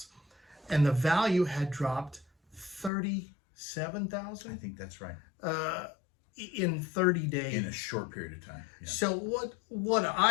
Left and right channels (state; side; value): drops out; right; at 2.9 s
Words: and the value had dropped $37,000. I think that's right. In 30 days. In a short period of time. Yeah. So what